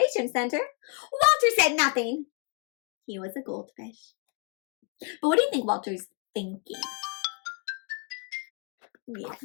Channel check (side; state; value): right; quieter; 34.1 dB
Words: center. Walter said nothing. He was a goldfish. But what do you think Walter's thinking? Yeah.